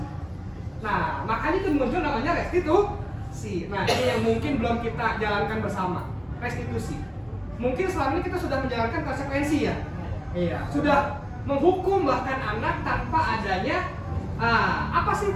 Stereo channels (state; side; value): identical; both; correlation 1.00